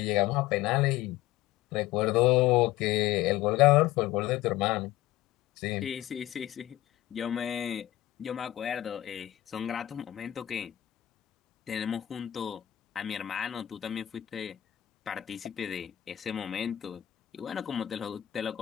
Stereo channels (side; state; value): right; quieter; 14.3 dB